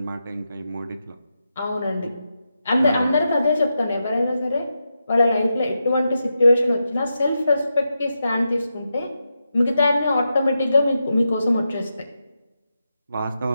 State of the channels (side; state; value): both; inverted; correlation -0.88